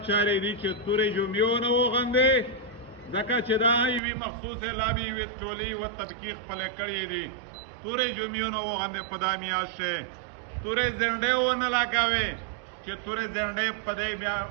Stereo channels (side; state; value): left; drops out; at 4.0 s